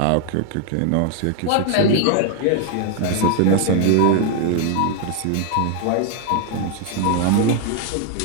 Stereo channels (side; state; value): both; different; correlation 0.00